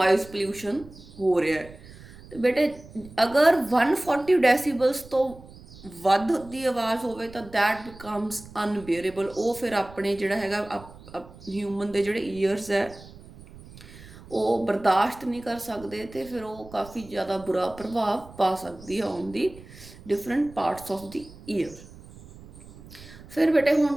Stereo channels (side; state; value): right; noise; rumble, 19 dB below the sound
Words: pollution ਹੋ ਰਿਹਾ ਹੈ. ਤੇ ਬੇਟੇ ਅਗਰ 140 decibels ਤੋਂ ਵੱਧ ਦੀ ਆਵਾਜ਼ ਹੋਵੇ ਤਾਂ that becomes unbearable. ਉਹ ਫਿਰ ਆਪਣੇ ਜਿਹੜਾ ਹੈਗਾ ਹਿਊਮਨ ਦੇ ਜਿਹੜੇ ਈਅਰਸ ਹੈ ਉਹ ਬਰਦਾਸ਼ਤ ਨਹੀਂ ਕਰ ਸਕਦੇ ਤੇ ਫਿਰ ਉਹ ਕਾਫੀ ਜ਼ਿਆਦਾ ਬੁਰਾ ਪ੍ਰਭਾਵ ਪਾ ਸਕਦੀ ਹੈ on the different parts of the year. ਫਿਰ ਬੇਟੇ ਹੁਣ